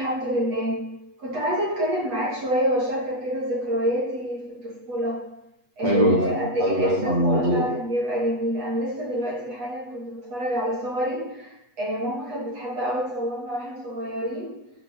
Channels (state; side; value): late; left; 8.2 ms